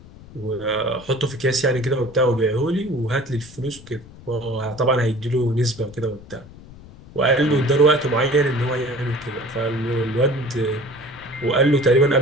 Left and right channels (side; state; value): left; noise; rumble, 20 dB below the sound